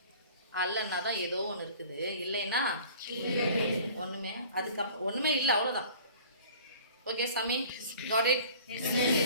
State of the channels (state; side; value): inverted; both; correlation -0.46